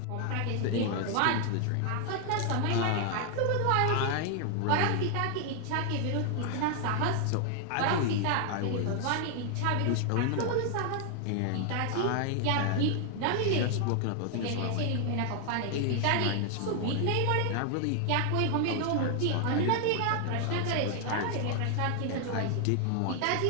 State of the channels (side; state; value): both; different; correlation 0.00